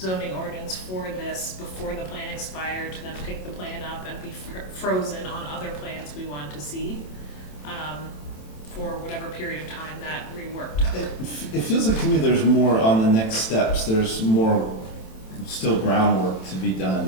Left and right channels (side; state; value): right; late; 27 ms